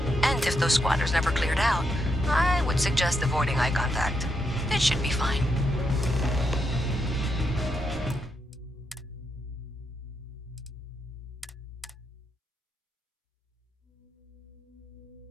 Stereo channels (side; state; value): both; normal; correlation 0.81